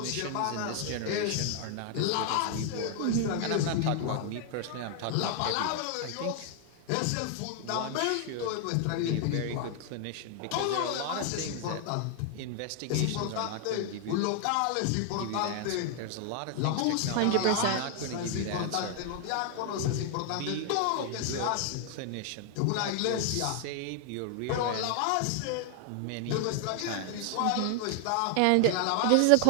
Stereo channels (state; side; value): different; both; correlation 0.00